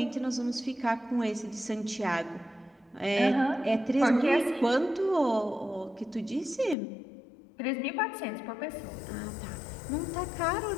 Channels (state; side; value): drops out; right; at 6.8 s